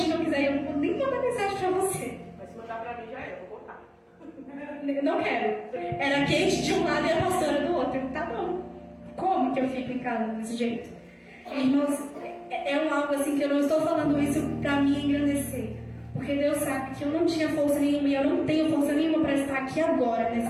não quiser ir, eu não vou nem mandar mensagem pra você. Mas se mandar pra mim já é, eu vou botar. Não quero. Era a Kate de um lado e a pastora do outro. Tá bom. Como que eu fico em casa desse jeito? Irmãos, é algo assim que eu não estou falando isso pra me engrandecer. Porque Deus sabe que eu não tinha força nenhuma e eu não tenho força nenhuma para estar aqui agora, nesse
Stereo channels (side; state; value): both; identical; correlation 1.00